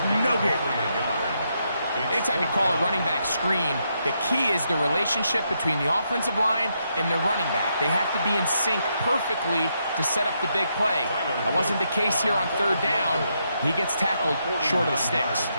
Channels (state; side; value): inverted; both; correlation -0.79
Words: no gain. Anytime you call a running back screen, the key is the relationship between the offensive line and the running back. They have to be in sync perfectly to set up the big play. That wasn't the case here on 3rd down. He gets tackled short of the sticks.